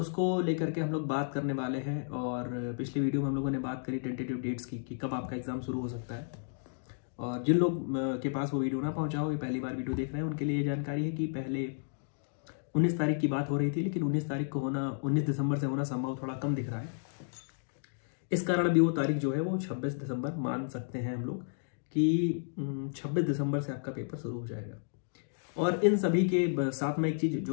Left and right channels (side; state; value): right; silent; digital silence